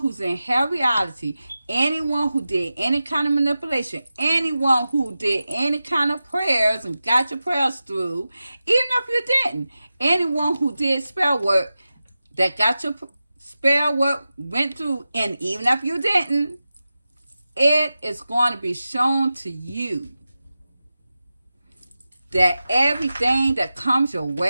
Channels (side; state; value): both; inverted; correlation -0.94